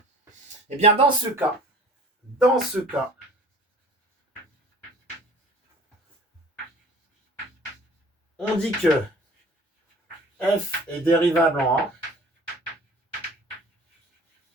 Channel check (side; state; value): both; normal; correlation 0.46